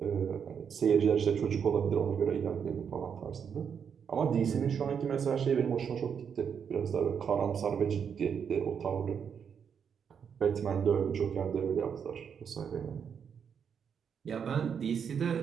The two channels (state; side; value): quieter; left; 7.2 dB